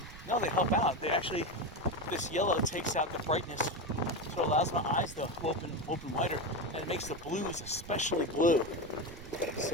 No, they help out. They actually, this yellow takes out the brightness, so it allows my eyes to open wider, and it makes the blues especially blue.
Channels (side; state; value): right; noise; rumble, 16 dB below the sound